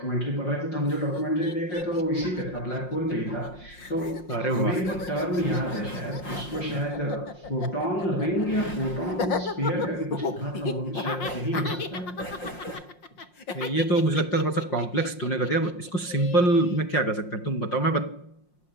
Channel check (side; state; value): right; late; 5.6 ms